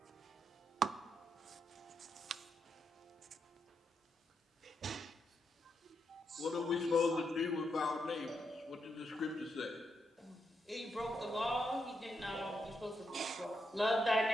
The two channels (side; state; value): both; normal; correlation 0.82